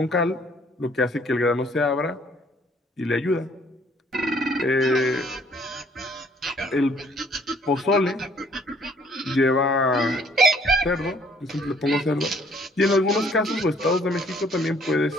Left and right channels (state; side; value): normal; both; correlation 0.60